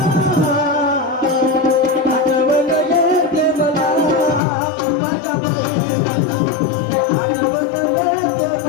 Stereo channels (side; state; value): right; drops out; at 4.4 s